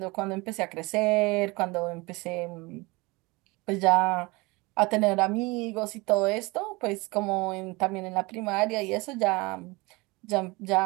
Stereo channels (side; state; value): left; quieter; 24.5 dB